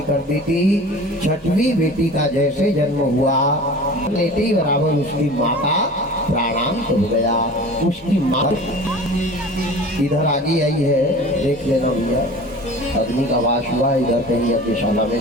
कर दी थी। 6वीं बेटी का जैसे जन्म हुआ लेते ही बराबर उसकी माँ का प्राणांत हो गया। उसकी माँ इधर आगे आई है, देख लेना भैया, अग्नि का वास हुआ इधर कहीं अग्निशाला में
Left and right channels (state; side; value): normal; both; correlation 0.40